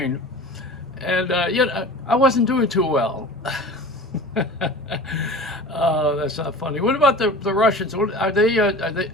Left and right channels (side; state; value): both; normal; correlation 0.37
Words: and yet I wasn't doing too well. Oh, that's not funny. What about the Russians? Are